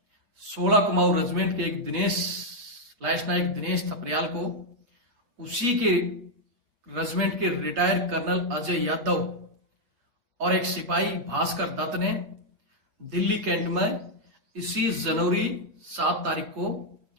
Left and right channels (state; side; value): late; left; 8.1 ms